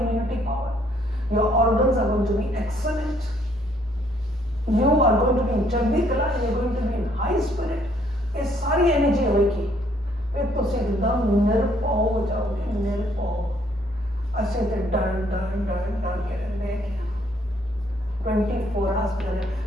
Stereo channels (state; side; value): normal; both; correlation 0.66